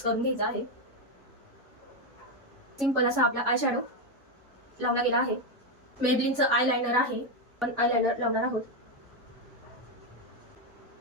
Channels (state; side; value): normal; both; correlation 0.07